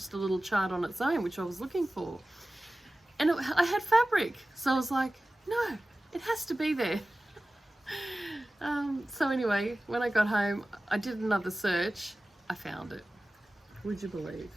a little chart on its own, which I was looking for. And I had fabric, so I was like, no, it has to be there. So anyway, when I got home, I did another search. I found it. Would you believe?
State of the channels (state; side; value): normal; both; correlation 0.96